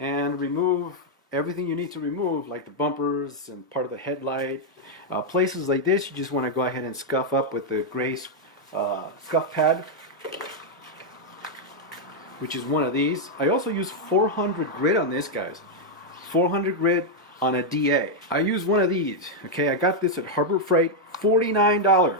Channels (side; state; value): both; normal; correlation -0.02